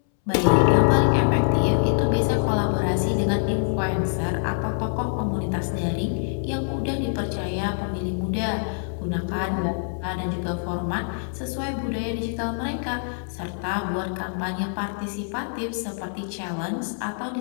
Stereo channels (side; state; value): right; silent; 62 dB below the other